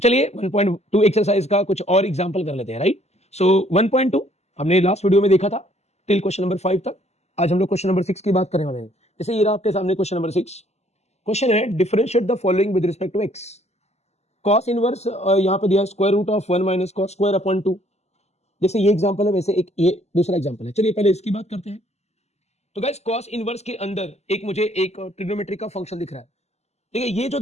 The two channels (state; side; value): late; right; 0.32 ms